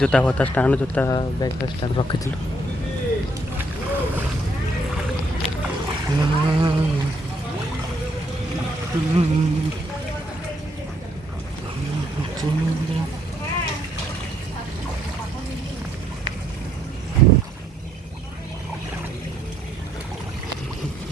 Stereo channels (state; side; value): normal; both; correlation 0.71